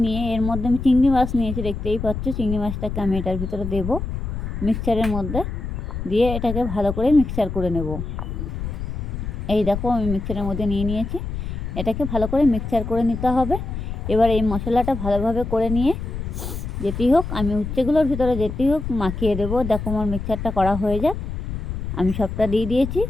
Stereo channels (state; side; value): noise; left; rumble, 5 dB below the sound